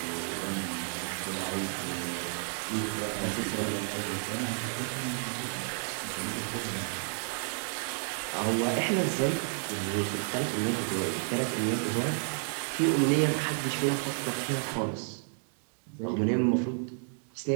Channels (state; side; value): silent; left; 57 dB below the other